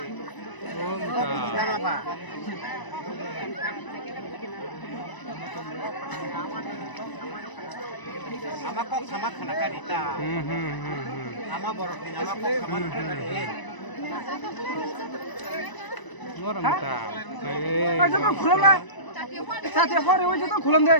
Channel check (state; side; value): late; right; 1.0 ms